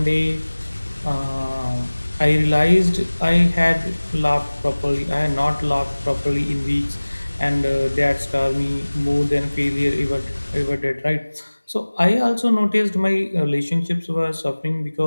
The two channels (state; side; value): inverted; both; correlation -1.00